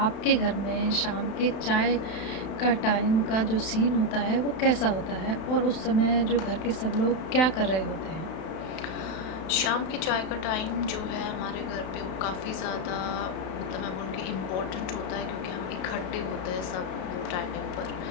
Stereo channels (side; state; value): right; late; 31 ms